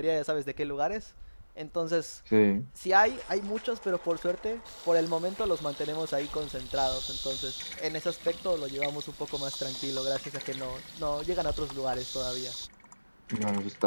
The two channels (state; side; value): inverted; both; correlation -1.00